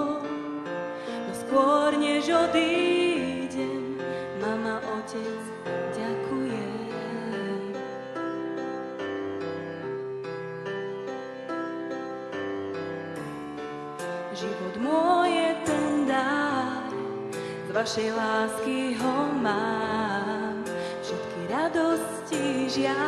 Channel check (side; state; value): both; identical; correlation 1.00